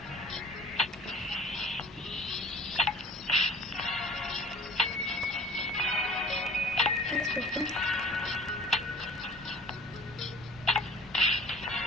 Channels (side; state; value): both; normal; correlation 0.47